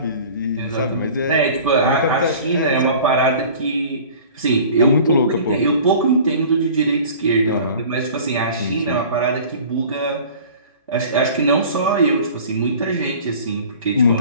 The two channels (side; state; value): both; inverted; correlation -0.44